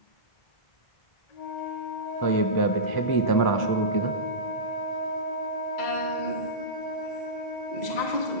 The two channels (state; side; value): late; right; 1.0 ms